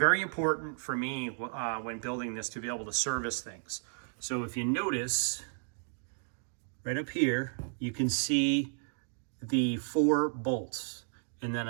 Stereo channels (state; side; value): silent; left; digital silence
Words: important for me when building this to be able to service things. So if you notice, right up here, you can see the 4 bolts. And then